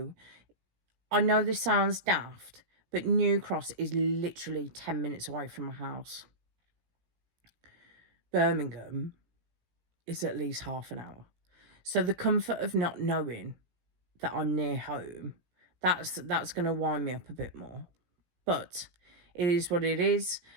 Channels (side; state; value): left; late; 17 ms